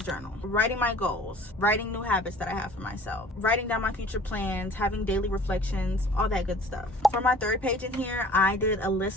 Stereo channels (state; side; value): normal; both; correlation 0.48